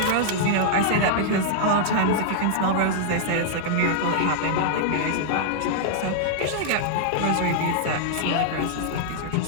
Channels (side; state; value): both; different; correlation -0.01